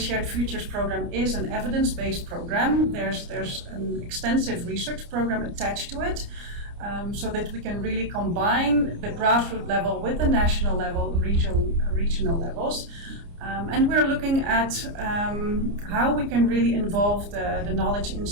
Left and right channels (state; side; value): late; left; 29 ms